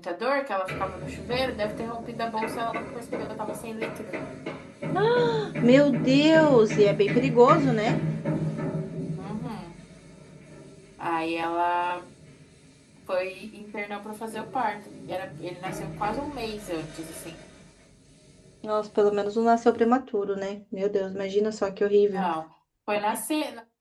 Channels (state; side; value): identical; both; correlation 1.00